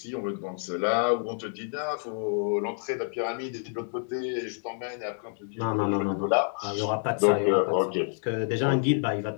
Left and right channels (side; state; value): right; silent; 56 dB below the other